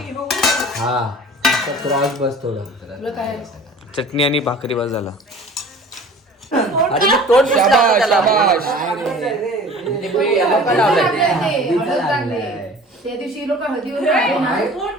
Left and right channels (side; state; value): both; normal; correlation 0.44